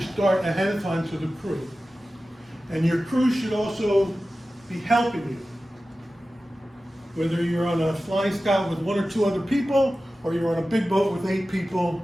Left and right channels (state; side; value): normal; both; correlation 0.95